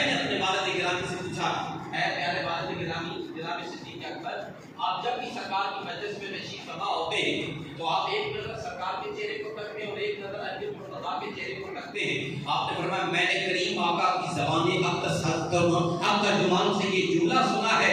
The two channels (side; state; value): both; identical; correlation 1.00